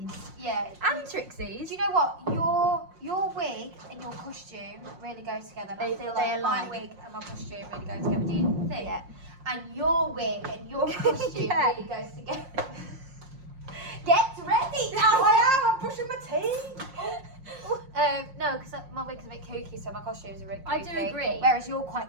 Yeah. And Trixie's. Do you know what? Your wig and your costume really go together. I feel they like my align. wig and my costume really go together. Do you think? Yeah. And your wig and your costume Yeah. really goes together. Get ready! I'm brushing my teeth. No, because my wig's a bit kooky, so my costumes are a bit kooky. I do agree. Whereas you're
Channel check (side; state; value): left; late; 5.6 ms